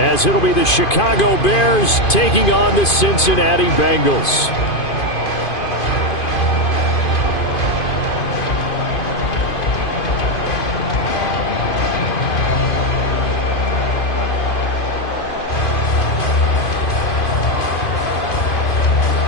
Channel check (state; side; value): late; right; 2.5 ms